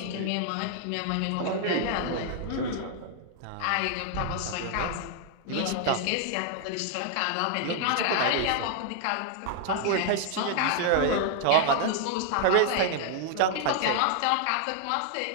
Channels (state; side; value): different; both; correlation 0.00